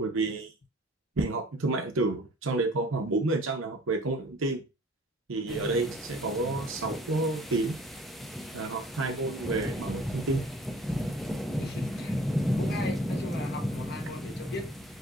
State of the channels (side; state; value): both; normal; correlation 0.50